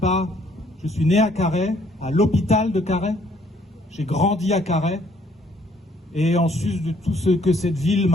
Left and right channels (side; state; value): both; normal; correlation 0.64